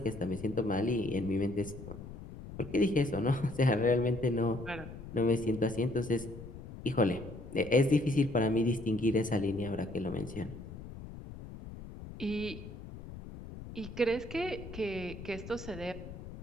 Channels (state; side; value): noise; left; rumble, 13 dB below the sound